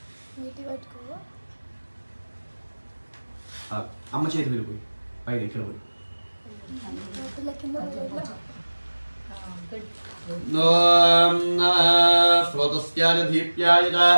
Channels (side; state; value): both; inverted; correlation -1.00